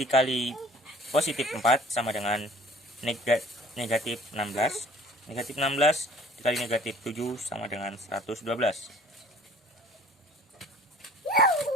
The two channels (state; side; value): normal; both; correlation 0.50